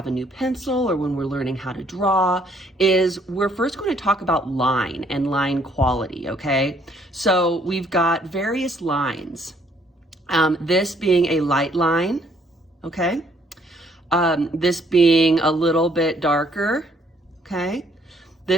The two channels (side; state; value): both; normal; correlation 0.66